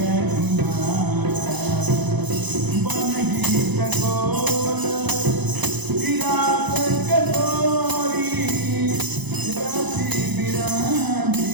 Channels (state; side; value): late; left; 0.99 ms